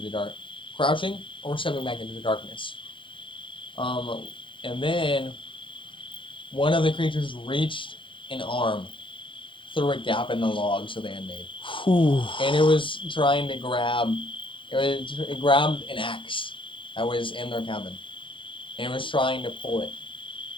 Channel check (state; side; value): late; right; 0.25 ms